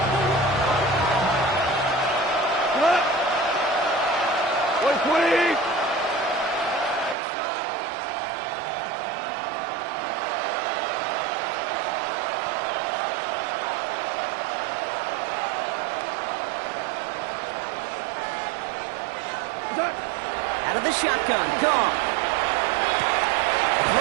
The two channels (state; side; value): drops out; left; at 7.2 s